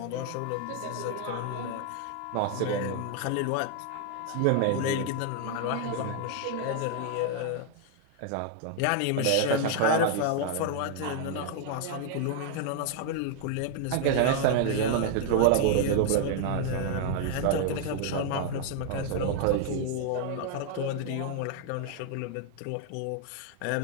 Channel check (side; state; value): both; different; correlation 0.00